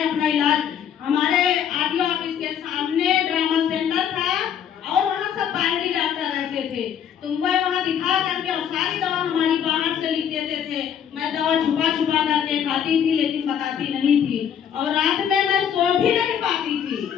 अपना इलाज हमारे आरटीओ ऑफिस के सामने ड्रामा सेंटर था और वहाँ सब बाहरी डॉक्टर रहते थे, तो मैं वहाँ दिखा करके और सारी दवा हमारी बाहर से लिख देते थे। मैं दवा छुपा छुपा करके खाती थी लेकिन बताती नहीं थी और रात में मैं सो भी नहीं पाती थी।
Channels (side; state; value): right; quieter; 8.7 dB